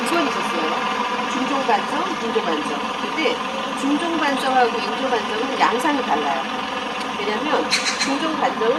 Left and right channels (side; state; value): both; identical; correlation 1.00